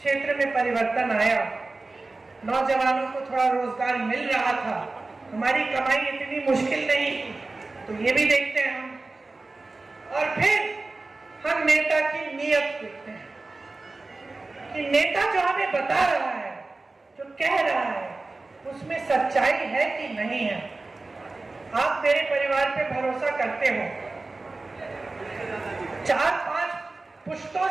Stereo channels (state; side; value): quieter; left; 3.4 dB